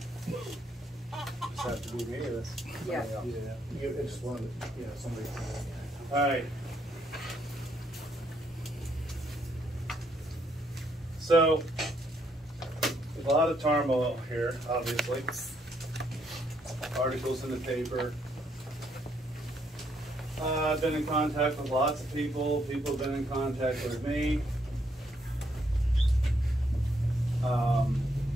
now. Just have to be me or this? Yeah. You, it's one, somebody. Alright. So, there's a lot of turmoil here, obviously. Articles in the paper. I've been in contact with lots of people. People have been in contact with me.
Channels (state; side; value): normal; both; correlation 0.73